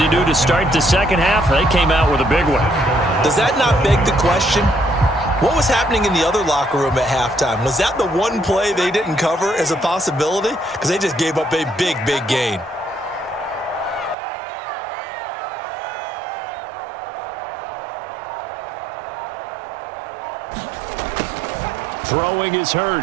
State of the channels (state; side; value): drops out; left; at 14.2 s